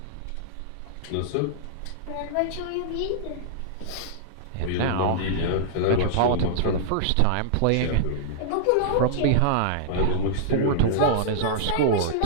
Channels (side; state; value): both; different; correlation -0.02